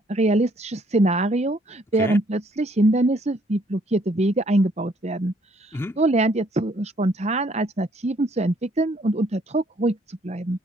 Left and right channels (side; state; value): both; normal; correlation 0.65